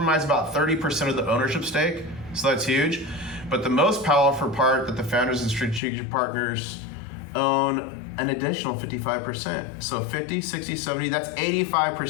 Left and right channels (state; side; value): drops out; right; at 5.8 s